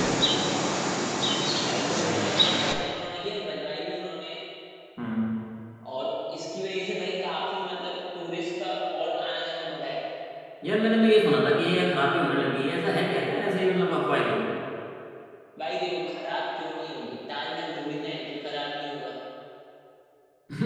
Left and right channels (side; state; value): both; identical; correlation 1.00